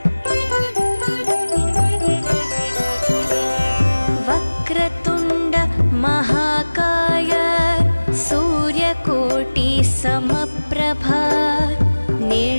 वक्रतुण्ड महाकाय सूर्यकोटि समप्रभा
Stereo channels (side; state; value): both; inverted; correlation -1.00